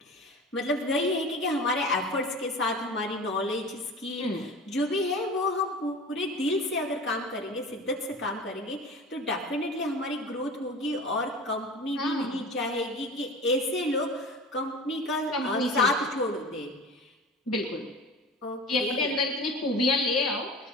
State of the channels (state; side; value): normal; both; correlation 0.36